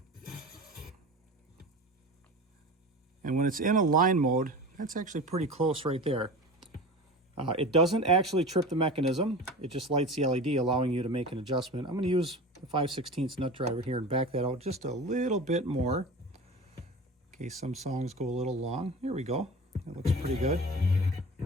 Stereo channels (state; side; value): normal; both; correlation 0.33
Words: And when it's in a line mode, that's actually pretty close right there. It doesn't actually trip the mechanism. It just lights the LED, allowing you to make an adjustment. I'm going to use the 5/16 nut driver here and back that out just a little bit more, in case some songs go a little long. Here we go. That looks pretty good.